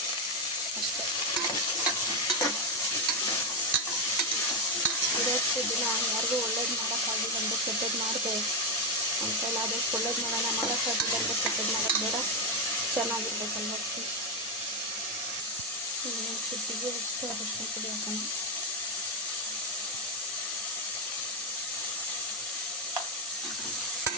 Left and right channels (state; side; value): normal; both; correlation 0.06